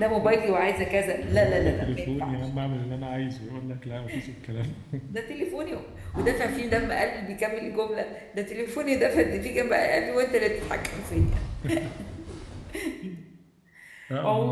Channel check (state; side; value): identical; both; correlation 1.00